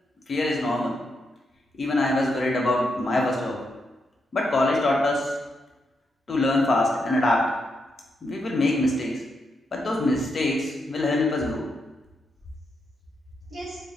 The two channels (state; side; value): normal; both; correlation 0.82